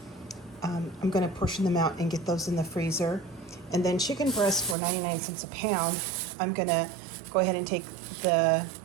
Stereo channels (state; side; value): drops out; left; at 4.8 s